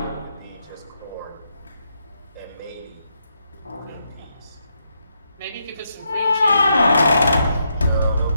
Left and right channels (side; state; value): both; inverted; correlation -0.80